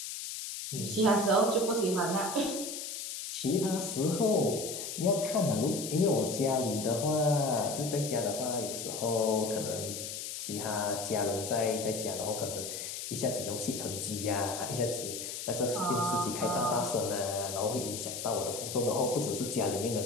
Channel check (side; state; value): left; noise; hiss, 6 dB below the sound